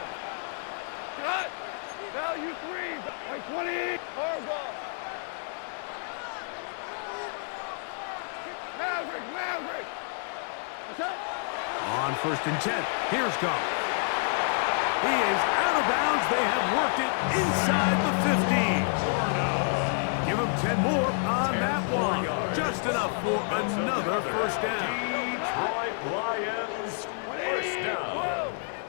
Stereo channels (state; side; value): silent; right; 56 dB below the other